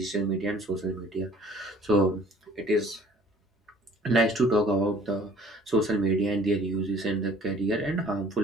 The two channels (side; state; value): both; normal; correlation 0.54